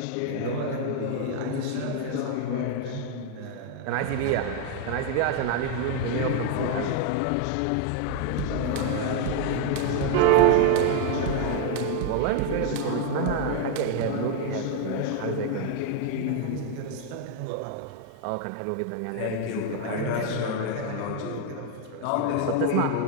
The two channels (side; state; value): both; different; correlation 0.00